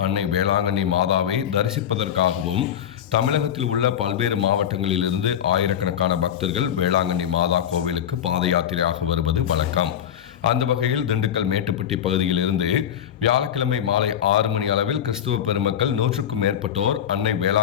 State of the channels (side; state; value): right; quieter; 9.8 dB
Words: அன்னை வேளாங்கண்ணி மாதாவை தரிசிப்பதற்காகவும் தமிழகத்தில் உள்ள பல்வேறு மாவட்டங்களிலிருந்து ஆயிரக்கணக்கான பக்தர்கள் வேளாங்கண்ணி மாதா கோவிலுக்கு பாத யாத்திரையாக வருவது வழக்கம். அந்த வகையில் திண்டுக்கல் மேட்டுப்பட்டி பகுதியில் இருந்து வியாழக்கிழமை மாலை 6 மணி அளவில் கிறிஸ்துவ பெருமக்கள் 100க்கும் மேற்பட்டோர் அன்னை